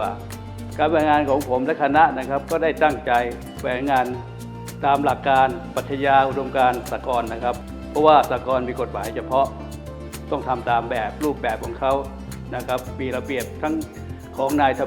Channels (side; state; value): both; identical; correlation 1.00